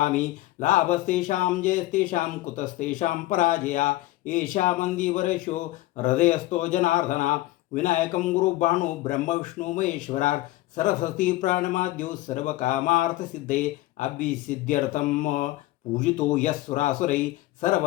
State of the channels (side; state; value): right; quieter; 17.3 dB